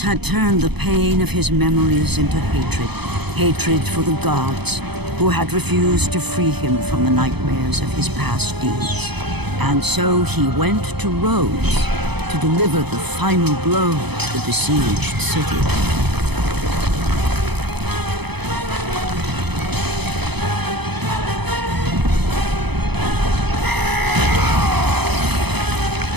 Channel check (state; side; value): late; left; 0.98 ms